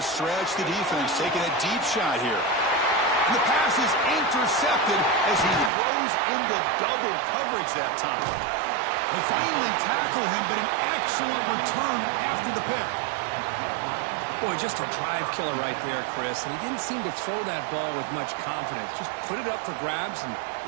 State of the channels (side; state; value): left; drops out; at 5.7 s